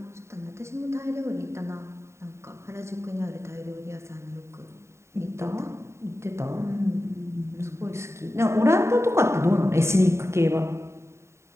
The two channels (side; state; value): left; late; 0.13 ms